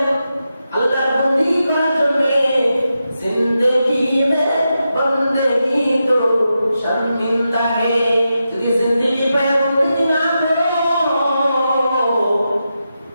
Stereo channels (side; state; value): both; inverted; correlation -0.88